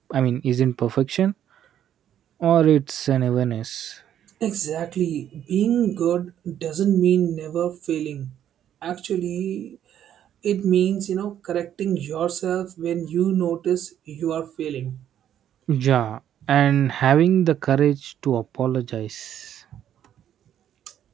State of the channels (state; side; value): quieter; left; 10.4 dB